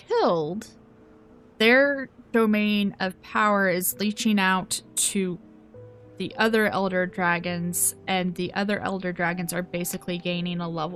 their domain of power is leeching out to the other Elder Dragons, and the other Elder Dragons are basically gaining a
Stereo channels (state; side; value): identical; both; correlation 1.00